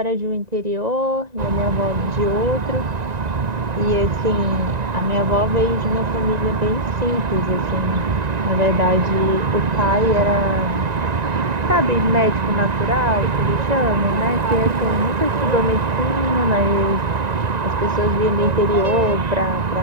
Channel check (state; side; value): late; left; 1.9 ms